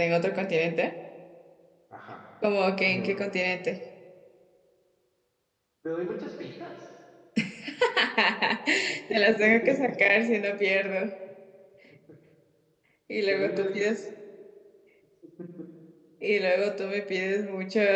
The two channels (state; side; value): identical; both; correlation 1.00